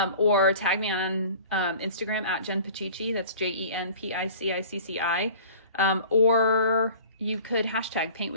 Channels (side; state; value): both; inverted; correlation -0.44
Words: or tag me on Instagram @JenPacici. That's JenPicicci. Or you could hashtag paint